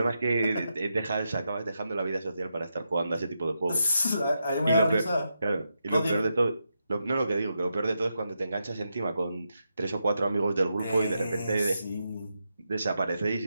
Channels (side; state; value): both; inverted; correlation -0.85